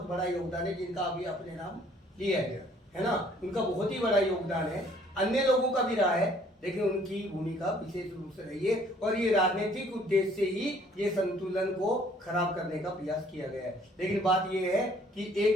बड़ा योगदान है जिनका अभी अपने नाम लिया है ना, उनका बहुत ही बड़ा योगदान है। अन्य लोगों का भी रहा है, लेकिन उनकी भूमिका विशेष रूप से रही है, और ये राजनीतिक उद्देश्य से ही ये संतुलन को खराब करने का प्रयास किया गया है। लेकिन बात ये है कि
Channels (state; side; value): normal; both; correlation 0.59